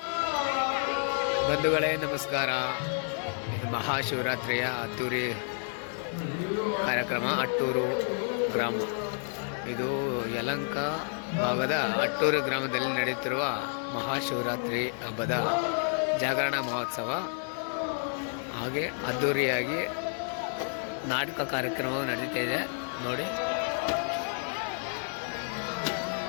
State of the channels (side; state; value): right; silent; 58 dB below the other